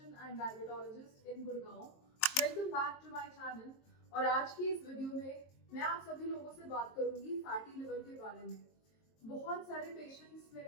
and diabetologist in Gurgaon. Welcome back to my channel. और आज की इस वीडियो में मैं आप सभी लोगों से बात करूंगी फैटी लिवर के बारे में। बहुत सारे पेशेंट्स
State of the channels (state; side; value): late; right; 22 ms